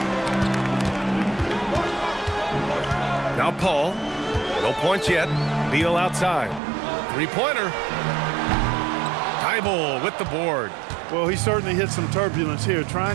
Now Paul. No points yet. Beal outside. Three-pointer. Thibault with the board. Well, he certainly hit some turbulence here,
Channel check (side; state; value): left; drops out; at 6.6 s